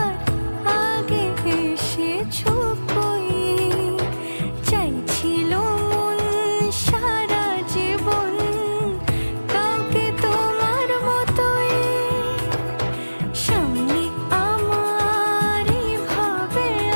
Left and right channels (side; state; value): both; inverted; correlation -1.00